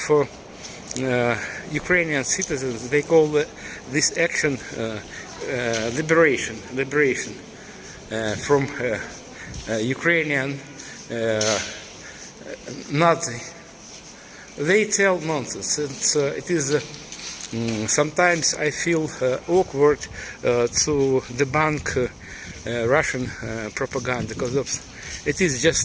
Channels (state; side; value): identical; both; correlation 1.00